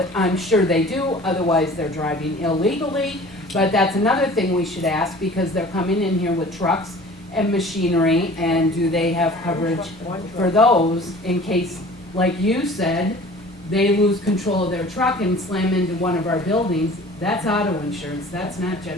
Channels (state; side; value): normal; both; correlation 0.45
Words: I'm sure they do, otherwise they're driving illegally, but that's another thing we should ask, because they're coming in here with trucks and machinery, and do they have coverage for those in case, like you said, they lose control of their truck and slam into one of our buildings? That's auto insurance, that's not